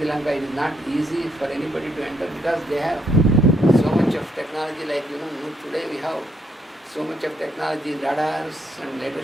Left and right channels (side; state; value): both; normal; correlation 0.73